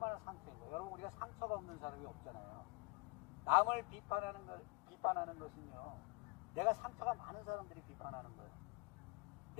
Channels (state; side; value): quieter; right; 25.0 dB